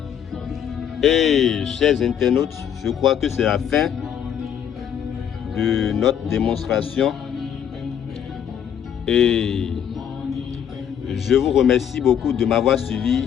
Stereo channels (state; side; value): quieter; right; 8.9 dB